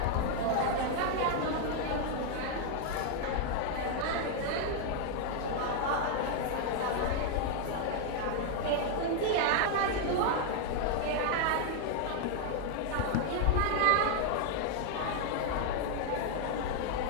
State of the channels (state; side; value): different; both; correlation 0.00